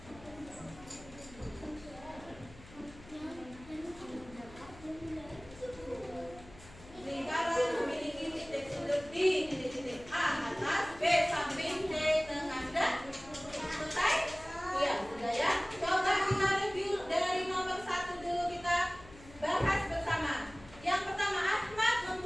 Lingkaran memiliki titik sudut di titik-titik A atas, B samping, C tengah. Sudah? Selesai? Iya, sudah ya. Coba kita review dari nomor 1 dulu, kita bahas bersama. Yang pertama, Ahmad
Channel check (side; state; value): left; noise; hum, 20 dB below the sound